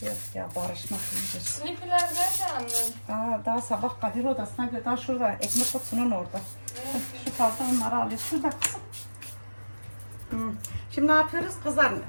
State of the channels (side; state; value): both; inverted; correlation -1.00